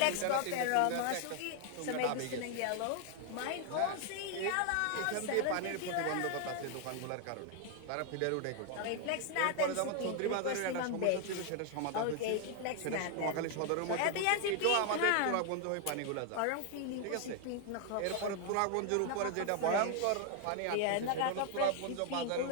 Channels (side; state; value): both; different; correlation 0.00